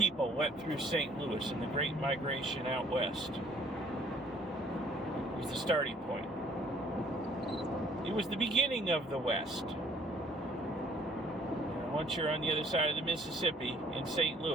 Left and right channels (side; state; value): both; normal; correlation 0.59